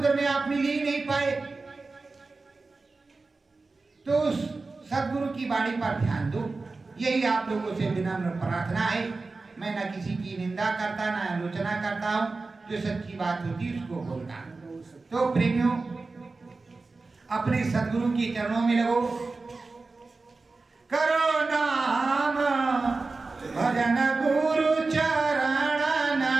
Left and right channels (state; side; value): quieter; left; 3.8 dB